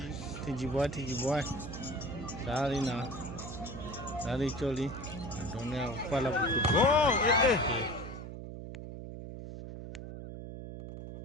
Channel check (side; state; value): right; noise; hum, 9 dB below the sound